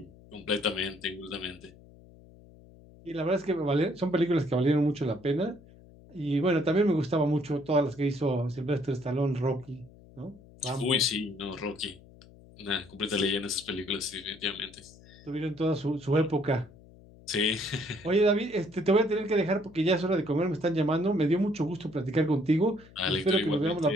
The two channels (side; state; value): left; noise; hum, 23 dB below the sound